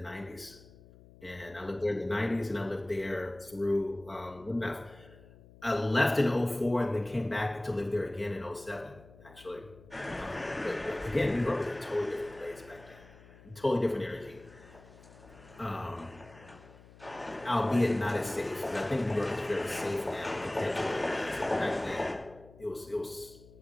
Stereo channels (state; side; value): noise; left; hum, 22 dB below the sound